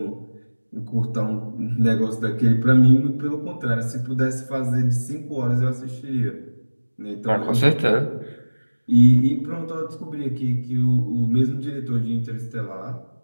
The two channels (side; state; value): both; inverted; correlation -1.00